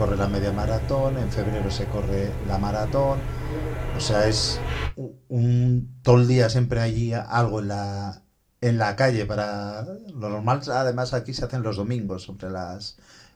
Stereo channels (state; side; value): identical; both; correlation 1.00